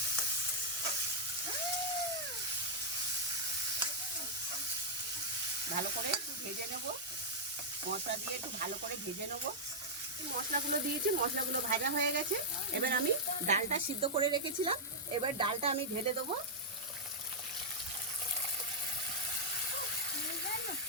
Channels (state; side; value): normal; both; correlation -0.06